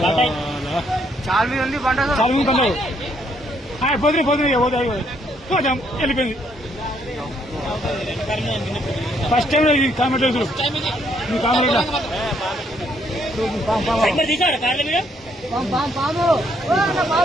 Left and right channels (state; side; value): normal; both; correlation 0.70